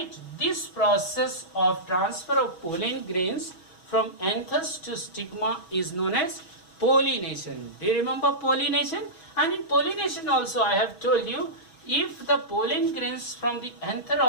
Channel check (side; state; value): right; late; 6.2 ms